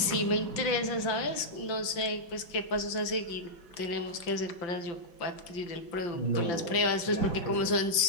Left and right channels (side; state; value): right; late; 5.8 ms